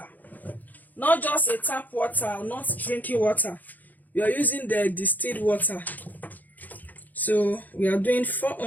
not just a tap water, not drinking water. We are using the distilled water. So we are doing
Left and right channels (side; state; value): right; late; 0.083 ms